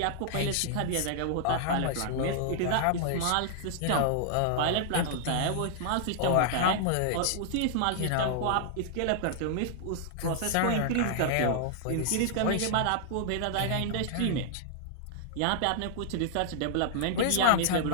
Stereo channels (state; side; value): different; both; correlation -0.01